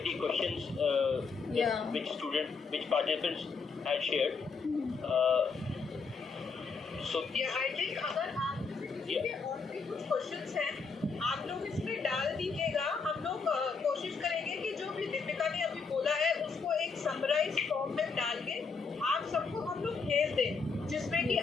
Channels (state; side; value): quieter; right; 4.9 dB